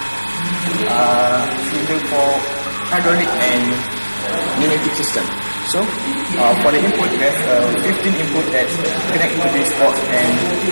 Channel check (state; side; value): inverted; both; correlation -1.00